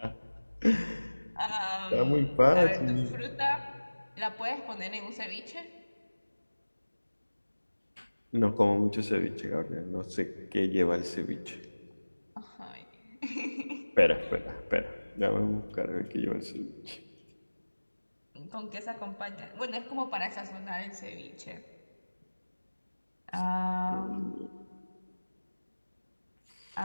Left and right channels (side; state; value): both; inverted; correlation -1.00